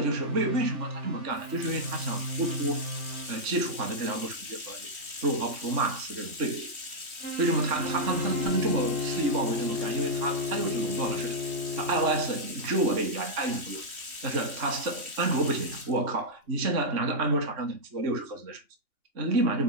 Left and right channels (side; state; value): left; late; 3.1 ms